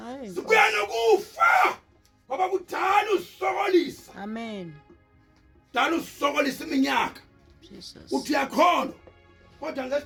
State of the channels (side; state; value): both; identical; correlation 1.00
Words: sibuya nokufa ngoba kudala usokolisa Amen. kudala usokolisa iminyaka Jesus. uthi uyakholwa kodwa